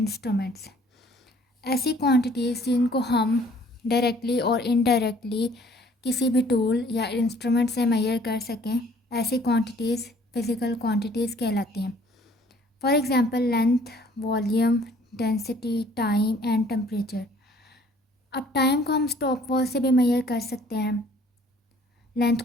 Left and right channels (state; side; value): normal; both; correlation 0.57